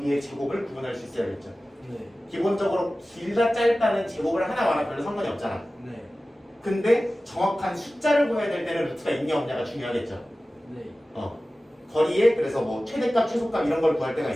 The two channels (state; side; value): normal; both; correlation 0.96